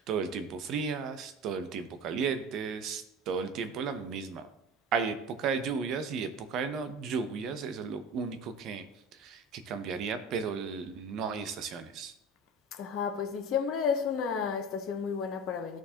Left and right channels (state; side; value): normal; both; correlation 0.34